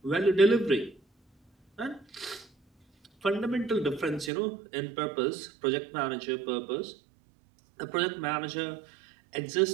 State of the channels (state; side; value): drops out; left; at 4.3 s